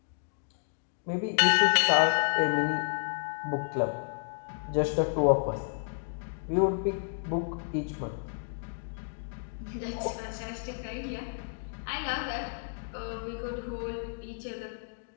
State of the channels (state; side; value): silent; right; digital silence